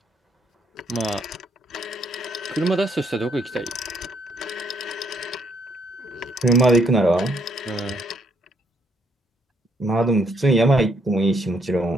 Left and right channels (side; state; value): both; normal; correlation 0.71